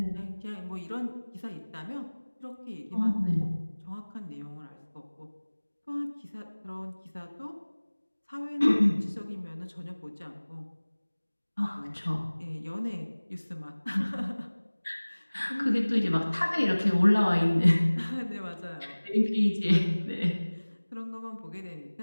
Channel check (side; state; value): both; inverted; correlation -1.00